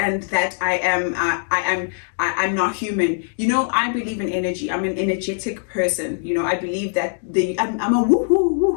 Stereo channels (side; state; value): right; silent; digital silence